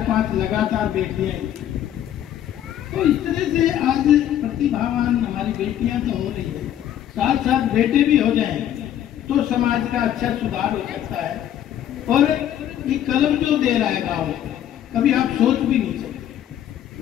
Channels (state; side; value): quieter; right; 11.0 dB